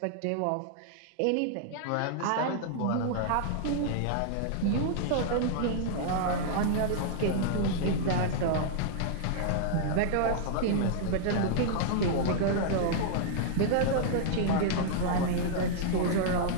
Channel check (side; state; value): both; different; correlation -0.01